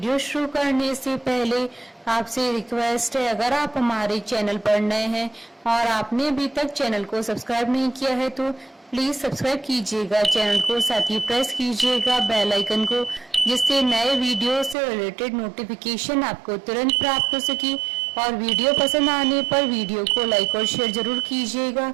शुरू करने से पहले आपसे रिक्वेस्ट है, अगर आप हमारे चैनल पर नए हैं और आपने अभी तक चैनल को सब्सक्राइब नहीं किया है तो प्लीज सब्सक्राइब कीजिएगा चैनल को, साथ ही प्रेस कीजिएगा बेल आइकन को, जिससे नए वीडियो से रिलेटेड नोटिफिकेशन आपको तुरंत प्राप्त हो सके। और वीडियो पसंद आने पर वीडियो को लाइक और शेयर जरूर कीजिएगा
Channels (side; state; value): left; drops out; at 14.8 s